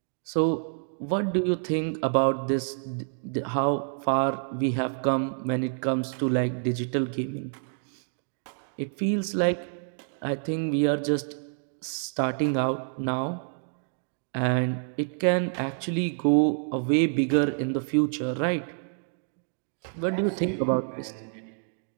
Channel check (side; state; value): left; silent; digital silence